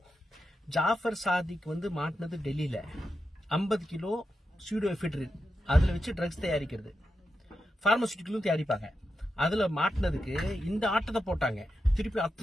ஜாஃபர் சாதிக் வந்து மாட்டினது டெல்லியில 50 கிலோ சூடோஎஃபெட்ரின், அதுல வச்சு ட்ரக்ஸ் தயாரிக்கிறது. பார்மசூட்டிக்கலும் தயாரிப்பாங்க. அதுல மாட்டினதுக்கு இந்த ஆட்டத்தை போட்டாங்க. திருப்பி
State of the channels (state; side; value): normal; both; correlation 0.88